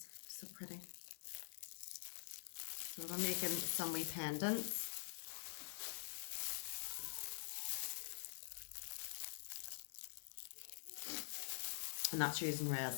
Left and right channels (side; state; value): right; silent; digital silence